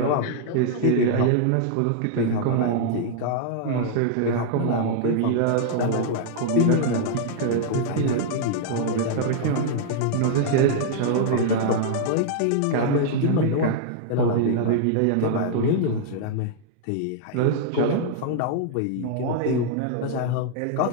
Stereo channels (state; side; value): different; both; correlation -0.01